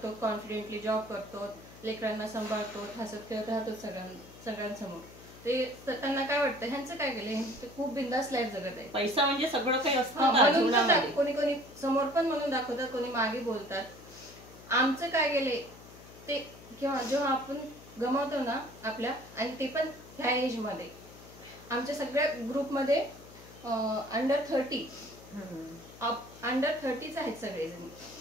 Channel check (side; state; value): left; noise; hum, 19 dB below the sound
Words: कॉन्फिडेंटली जॉब करतो, लेकरांना सांभाळतो, हसत खेळत राहतो सगळ्यांसमोर, ते त्यांना काय वाटतं ह्यांचं काय गेले, ते खूप बिंदास लाईफ जगत आहे. पैसा म्हणजे सगळं काही असतं हा, ना म्हणून जीवनामध्ये. कोणी कोणी समोर पण म्हणून दाखवतात, कोणी मागे बोलतात. आमचं काय गेले ते जेव्हा आपण गमावतो ना आपल्या, आणि ते पण ह्या एज मध्ये, आमच्या सगळ्या ग्रुपमध्ये अंडर 30 आहेत सगळेजण.